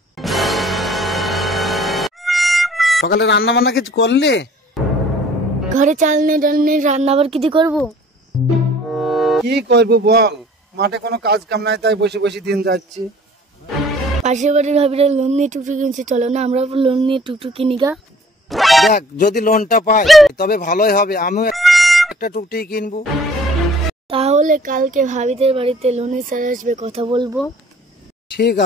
সকালে রান্না বান্না কিছু করলি? ঘরে চাল নেই ডাল নেই, রান্না আবার কি দিয়ে করবো? কি করবো বল, মাঠে কোনো কাজ কাম নাই, তাই বসে বসে দিন যাচ্ছি। পাশের বাড়ির ভাবিরা লোন নিয়ে টুকটুক কিনছে, চলো না আমরা লোন নিয়ে টুকটুক কিনি গা। দেখ যদি লোনটা পাই তবে ভালোই হবে, আমিও একটা টুকটুকি কিনবো। তাহলে কালকে ভাবিদের বাড়িতে লোনের স্যার আসবে, কথা বলবো। ঠিক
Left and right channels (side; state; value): both; normal; correlation 0.53